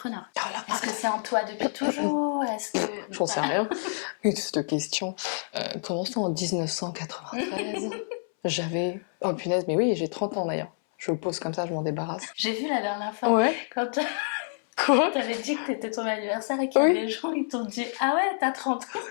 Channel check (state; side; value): silent; right; 60 dB below the other